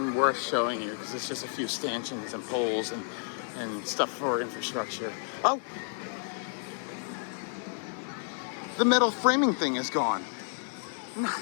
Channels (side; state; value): right; silent; digital silence